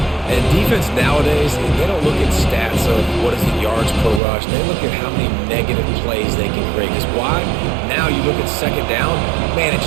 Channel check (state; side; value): drops out; left; at 4.2 s